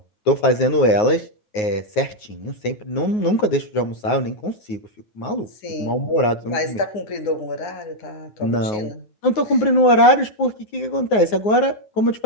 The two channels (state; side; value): late; right; 9.5 ms